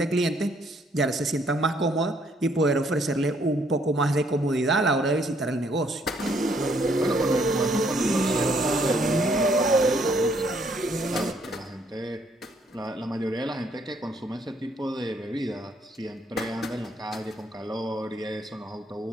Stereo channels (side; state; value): both; normal; correlation 0.68